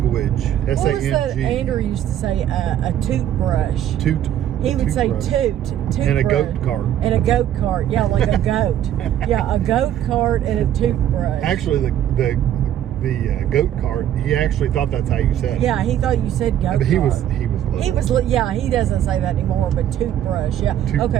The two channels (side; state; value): left; quieter; 11.0 dB